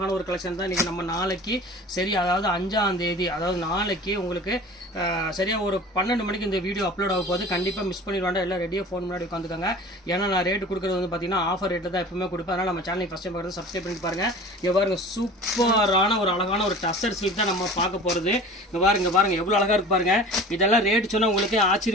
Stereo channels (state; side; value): normal; both; correlation 0.41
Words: ஒரு கலெக்ஷன் தான் இன்னைக்கு நம்ம நாளைக்கு சரி அதாவது 5ஆம் தேதி அதாவது நாளைக்கு உங்களுக்கு சரியா ஒரு 12 மணிக்கு இந்த வீடியோ அப்லோட் ஆக போகுது. கண்டிப்பா மிஸ் பண்ணிடுவாங்க. எல்லாம் ரெடியா ஃபோன் முன்னாடி உட்காந்துக்கோங்க. ஏன்னா நான் ரேட் கொடுக்குறது வந்து பார்த்தீங்கன்னா ஆஃபர் ரேட்டு தான் எப்பவுமே கொடுப்பேன். அதனால நம்ம சேனலை ஃபர்ஸ்ட் டைம் பார்க்குறது சப்ஸ்கிரைப் பண்ணி பாருங்க. இங்க பாருங்க சூப்பரான ஒரு அழகான ஒரு டசர் சில்க் தான் நம்ம பார்க்க போகிறது. இங்கே பாருங்க எவ்வளோ அழகாக இருக்கு பாருங்க. இதெல்லாம் ரேட் சொன்னால் உங்களுக்கு